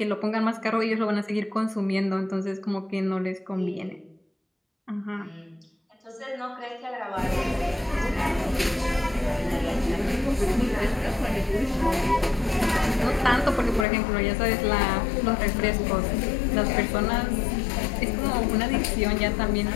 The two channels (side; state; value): right; drops out; at 13.9 s